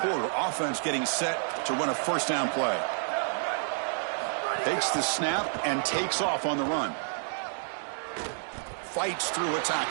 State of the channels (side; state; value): left; silent; digital silence